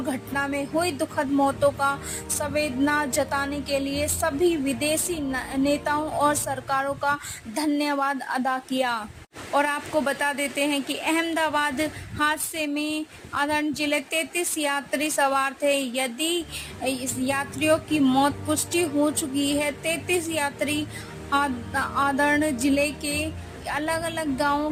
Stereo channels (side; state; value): both; identical; correlation 1.00